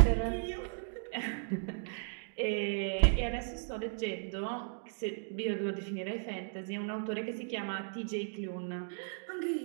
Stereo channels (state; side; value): silent; left; digital silence